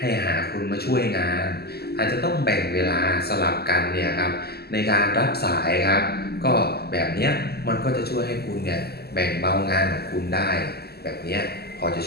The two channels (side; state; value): right; late; 0.46 ms